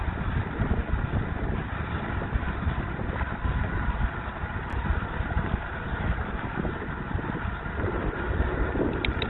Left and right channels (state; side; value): identical; both; correlation 1.00